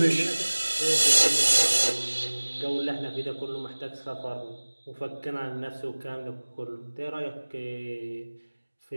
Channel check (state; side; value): inverted; both; correlation -1.00